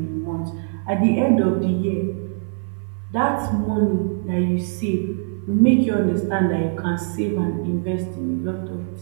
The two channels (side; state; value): left; silent; 57 dB below the other